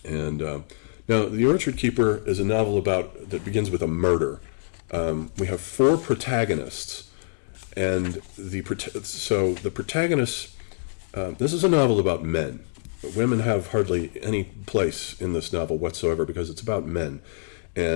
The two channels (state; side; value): silent; right; digital silence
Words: And now, The Orchard Keeper is a novel that begins with a murder. We have four protagonists, and the protagonists. This is a novel about men. Women have hardly any place in this novel whatsoever because it's about men.